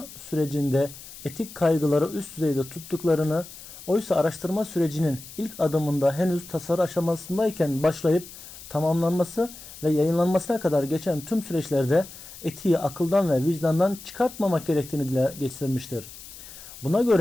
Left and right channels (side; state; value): left; noise; hiss, 16 dB below the sound